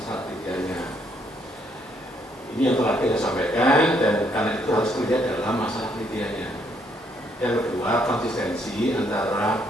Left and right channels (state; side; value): normal; both; correlation 0.71